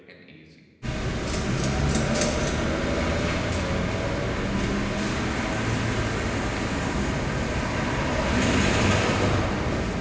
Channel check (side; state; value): both; identical; correlation 1.00